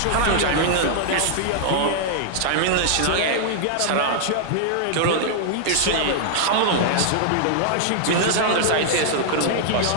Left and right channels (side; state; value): both; different; correlation -0.01